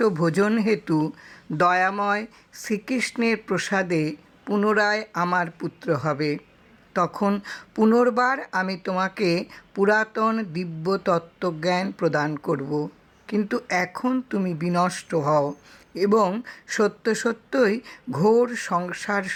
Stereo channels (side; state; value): both; identical; correlation 1.00